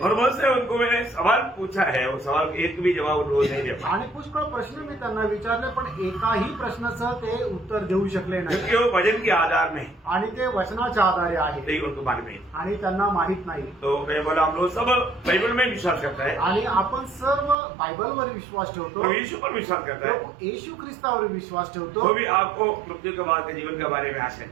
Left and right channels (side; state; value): left; drops out; at 17.6 s